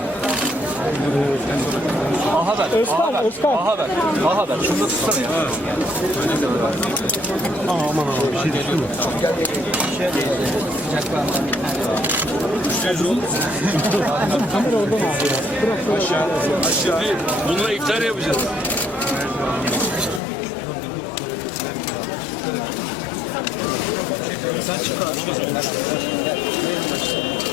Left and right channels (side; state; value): right; drops out; at 20.2 s